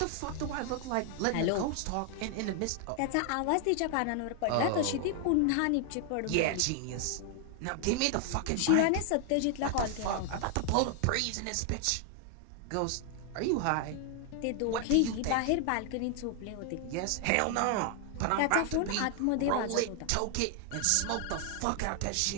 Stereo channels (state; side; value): different; both; correlation 0.00